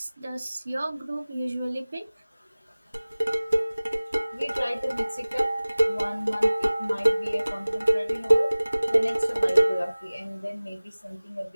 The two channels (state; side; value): inverted; both; correlation -0.99